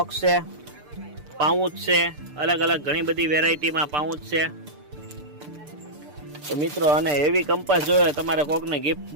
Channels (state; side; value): late; left; 6.8 ms